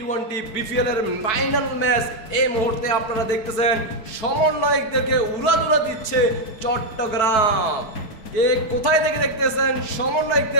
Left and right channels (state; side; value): late; right; 4.6 ms